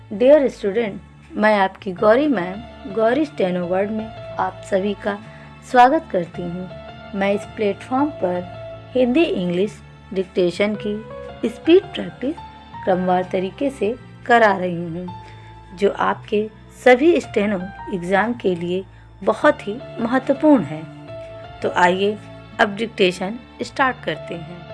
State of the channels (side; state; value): both; identical; correlation 1.00